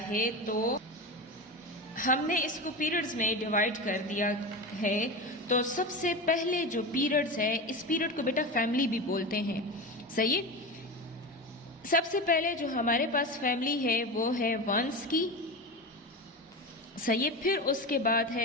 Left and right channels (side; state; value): both; normal; correlation 0.24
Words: है, तो हमने इसको पीरियड्स में डिवाइड कर दिया है, तो सबसे पहले जो पीरियड्स है, इस पीरियड को बेटा फैमिली भी बोलते हैं। सही। सबसे पहले जो हमारे पास फैमिली है वो है वंस की। सही। फिर उसके बाद